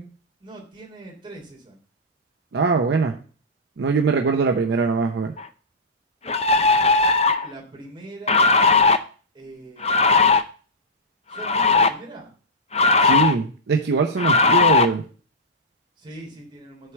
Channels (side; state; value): both; normal; correlation -0.17